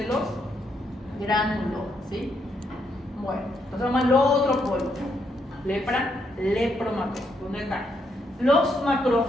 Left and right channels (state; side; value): normal; both; correlation 0.77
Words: los gránulos, ¿sí? Bueno, entonces vamos al otro polo. Lepra, lepromatófagos. ¿Dónde están? Los